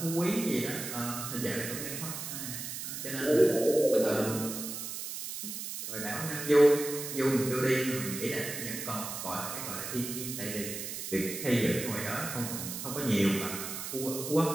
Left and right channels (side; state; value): right; noise; hiss, 6 dB below the sound